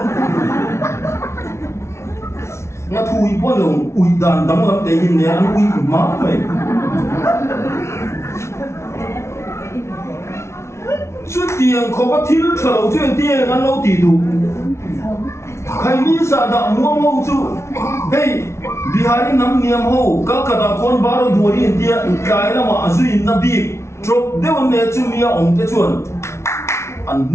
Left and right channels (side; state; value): right; late; 0.13 ms